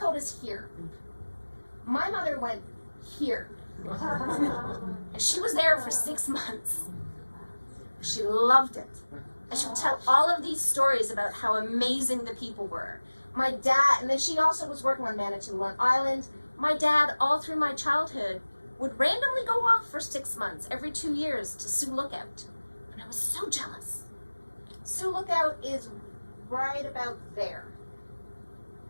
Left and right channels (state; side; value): inverted; both; correlation -1.00